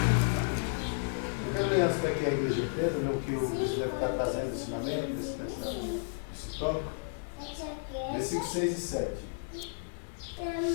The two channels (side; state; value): right; silent; digital silence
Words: Eu quero ler antes daqui a igreja inteira, no que o bispo deve estar fazendo, ensinamento, nesse tópico. Versículos 6 e 7.